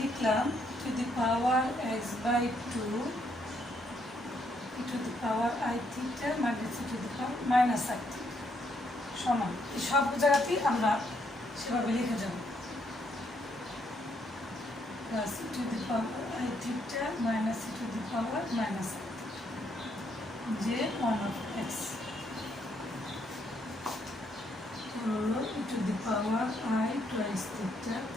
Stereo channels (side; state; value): both; normal; correlation 0.73